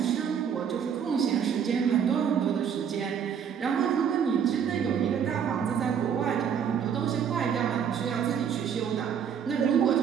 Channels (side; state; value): left; quieter; 7.8 dB